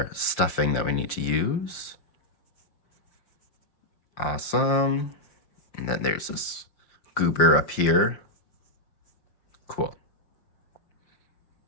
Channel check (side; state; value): right; late; 5.8 ms